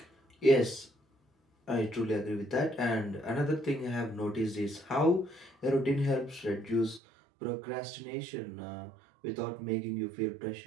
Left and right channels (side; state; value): left; drops out; at 7.0 s